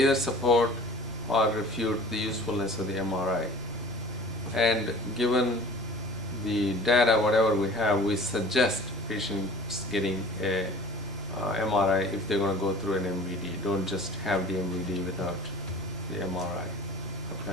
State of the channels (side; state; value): both; normal; correlation 0.44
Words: support or refute the usefulness of the MRI. And given the data, whatever we have, we suggest patients getting a MRI if they're going to go through an MVD. Don't just have the MVD without the MRI.